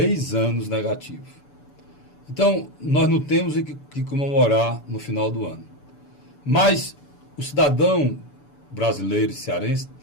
anos negativo. Então, nós não temos que comemorar no final do ano. Mas o cidadão brasileiro e cearense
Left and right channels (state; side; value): late; right; 6.9 ms